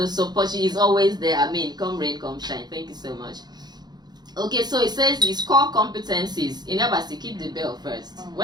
support. She is always there. I mean, come rain, come shine. Thank you so much. Okay, so it says his core competencies. In Abasi, keep the bell first.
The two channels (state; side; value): late; left; 0.20 ms